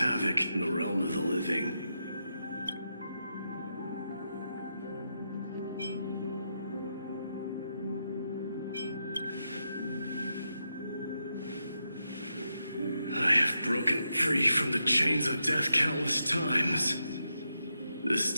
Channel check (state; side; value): inverted; both; correlation -0.85